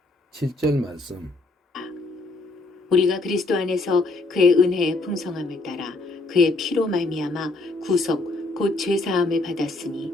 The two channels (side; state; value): right; quieter; 3.1 dB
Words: 7절 말씀. 우리가 그리스도 안에서 그의 은혜의 풍성함을 따라 그의 피로 말미암아 구속 곧 죄사함을